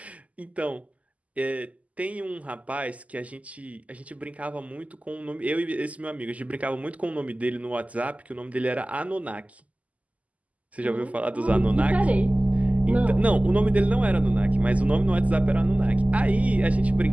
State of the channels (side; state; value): left; late; 0.071 ms